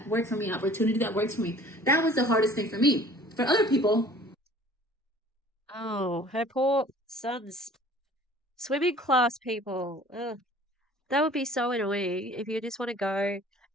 work for me, an opportunity that works for me. That was the hardest thing for me. For other people, Oh, her poor son's swimming class people. Ugh. That would be so annoying if you just want to go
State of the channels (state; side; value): normal; both; correlation 0.49